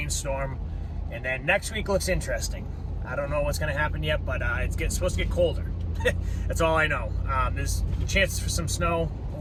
And then next week looks interesting. I don't know what's going to happen yet, but it's supposed to get colder. That's all I know. There's chances for some snow.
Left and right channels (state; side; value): identical; both; correlation 1.00